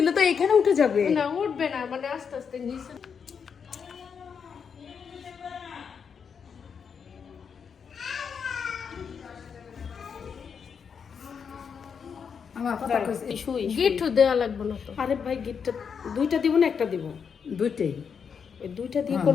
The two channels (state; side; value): quieter; right; 6.6 dB